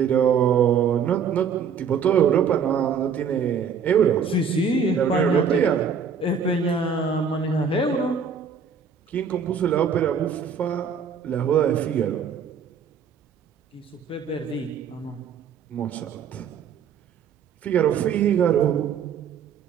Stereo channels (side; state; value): left; quieter; 6.7 dB